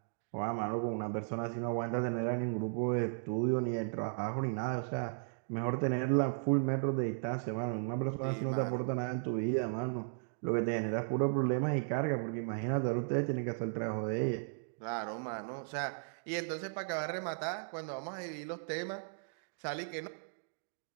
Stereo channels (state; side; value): silent; left; digital silence